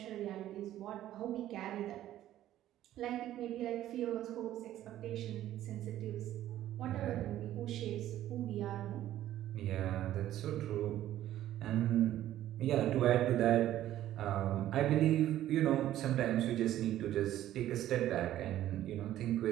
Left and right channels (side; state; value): left; quieter; 13.0 dB